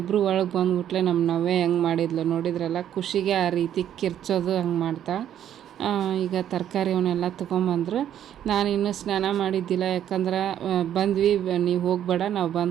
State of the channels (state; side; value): quieter; left; 10.5 dB